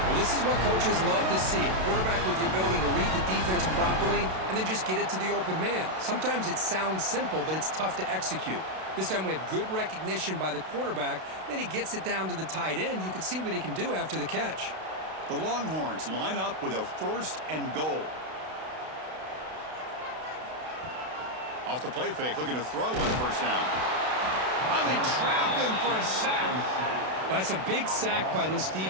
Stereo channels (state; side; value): late; left; 32 ms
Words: this is what coaches love to see. A quarterback with the ability to read the defense properly and then just get it to the open man. Sometimes it sounds simple, but it's tough to execute. This time we have good recognition by the quarterback. Then he gets it down to the tight end. You can see what he can do after the catch. The Longhorns line up with a first and goal. Off the play fake, looking to throw on the first down. Oh, they trap him for a sack. That's a big sack by this